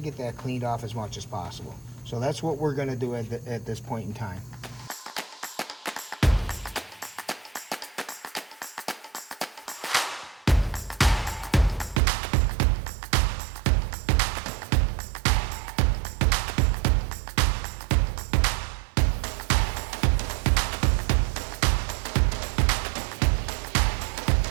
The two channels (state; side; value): drops out; left; at 12.0 s